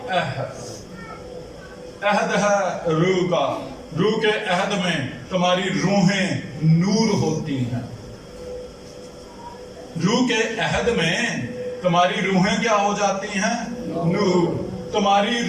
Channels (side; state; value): both; identical; correlation 1.00